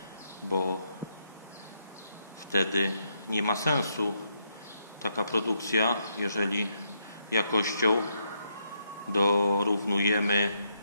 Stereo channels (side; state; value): both; inverted; correlation -0.78